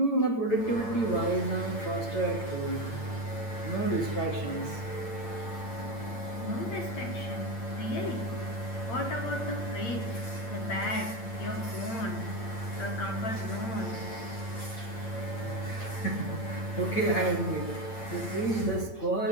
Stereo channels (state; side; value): late; right; 8.8 ms